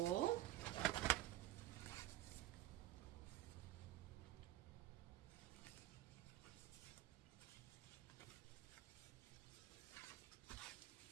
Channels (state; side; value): quieter; left; 14.9 dB